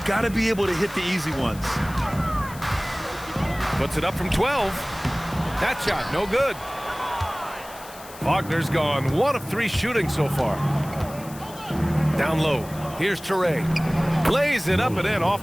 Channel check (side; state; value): left; noise; hiss, 18 dB below the sound